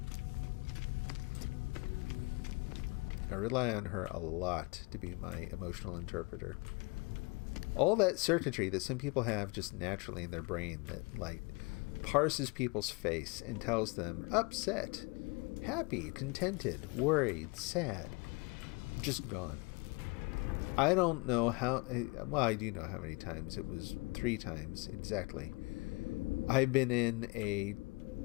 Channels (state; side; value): quieter; right; 29.1 dB